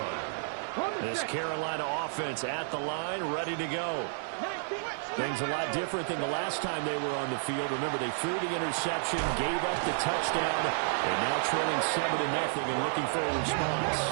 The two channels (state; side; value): silent; left; 57 dB below the other